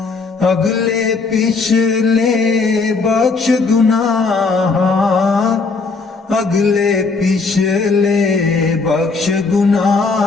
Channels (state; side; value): quieter; right; 4.2 dB